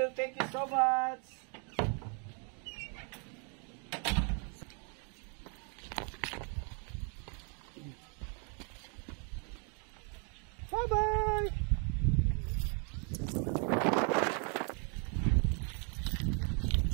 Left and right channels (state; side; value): quieter; left; 39.0 dB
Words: Thank you so much. Bye-bye.